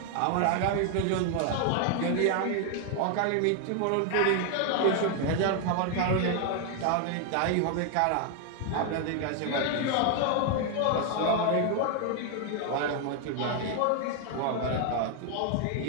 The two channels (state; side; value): different; both; correlation 0.00